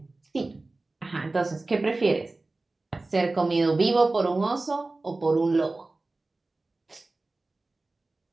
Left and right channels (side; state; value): left; quieter; 3.2 dB